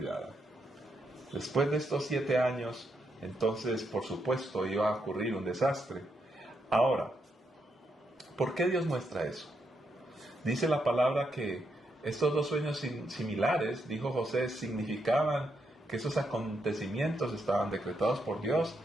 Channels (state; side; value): normal; both; correlation 0.80